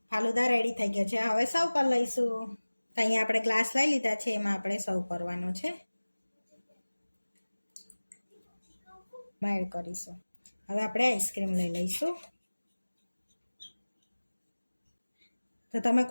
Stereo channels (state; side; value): inverted; both; correlation -1.00